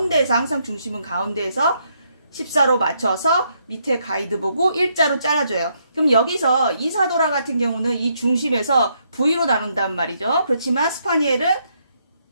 항상 중심은 가운데에서 14로 맞춰서 밑에 가이드 보고 일자로 잘라줘요. 그럼 여기서 이사도라 같은 경우는 이 중심에서 V로 나눈단 말이죠. 그렇지만 스파니엘은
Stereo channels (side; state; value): both; inverted; correlation -0.75